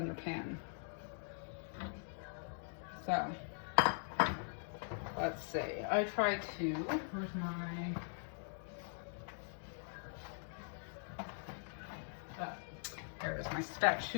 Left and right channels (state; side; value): silent; right; digital silence